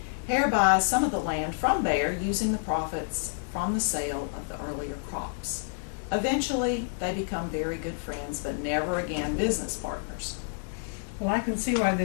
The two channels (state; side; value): silent; right; digital silence